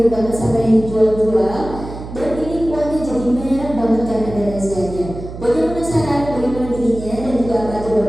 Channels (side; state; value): right; noise; hum, 11 dB below the sound